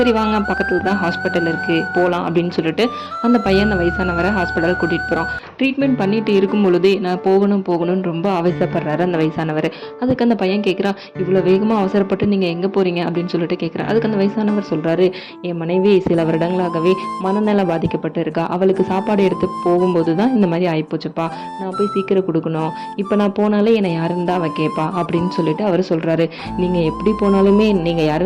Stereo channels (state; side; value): identical; both; correlation 1.00